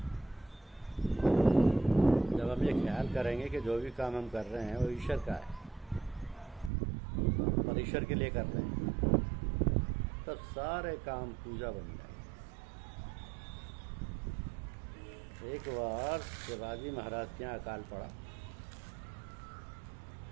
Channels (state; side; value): drops out; left; at 6.7 s